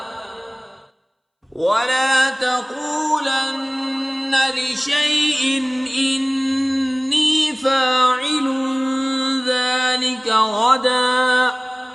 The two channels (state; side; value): identical; both; correlation 1.00